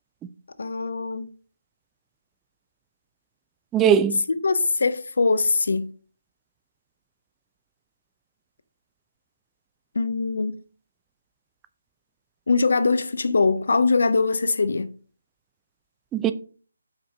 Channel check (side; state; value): both; inverted; correlation -0.68